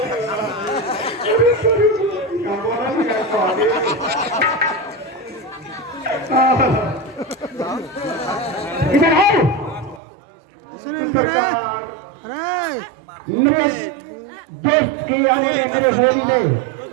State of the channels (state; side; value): drops out; left; at 10.0 s